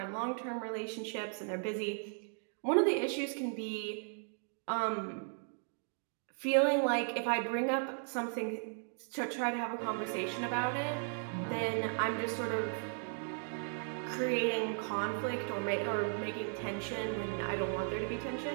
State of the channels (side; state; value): left; silent; 54 dB below the other